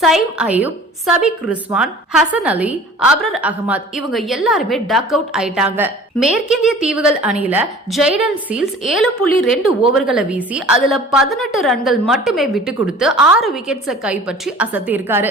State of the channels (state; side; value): normal; both; correlation 0.46